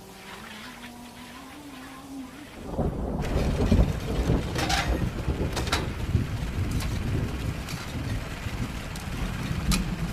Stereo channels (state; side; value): identical; both; correlation 1.00